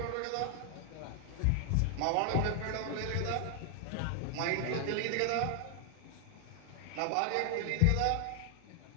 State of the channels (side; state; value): both; different; correlation 0.00